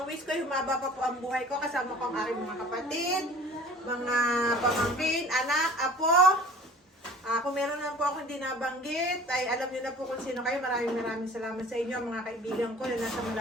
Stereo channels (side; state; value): both; normal; correlation 0.46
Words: wish ko, humaba pa po ang buhay ko. Kasama ko ang aking mga kapatid, mga pamangkin, anak, apo. Kung meron lang po ako hindi nabanggit, ay alam niyo na po kung sino kayo. Maraming salamat sa inyo, mga kaibigan ko na nasa